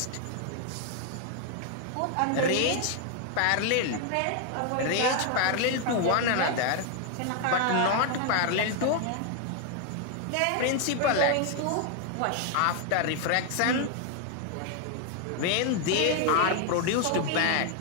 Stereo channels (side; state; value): both; different; correlation 0.00